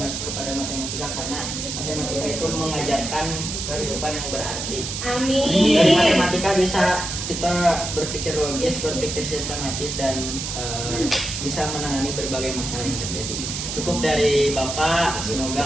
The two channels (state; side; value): noise; right; hiss, 5 dB below the sound